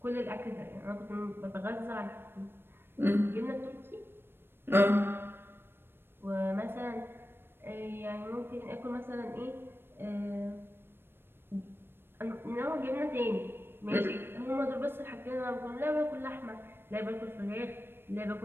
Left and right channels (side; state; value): left; late; 0.10 ms